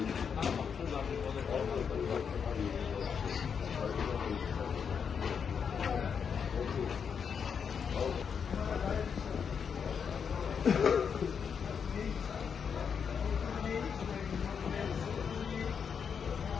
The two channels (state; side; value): quieter; right; 6.8 dB